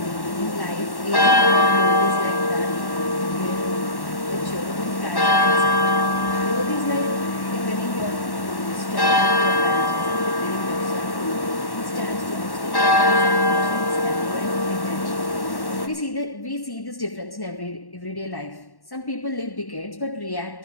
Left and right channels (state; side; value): late; right; 1.1 ms